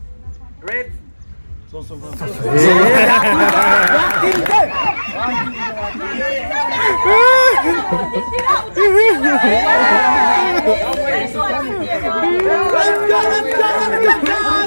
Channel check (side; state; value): both; inverted; correlation -1.00